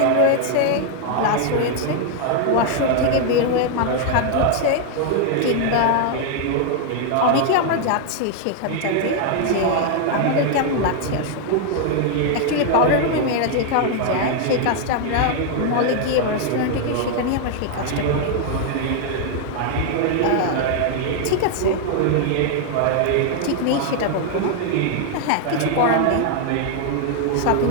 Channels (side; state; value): both; different; correlation 0.00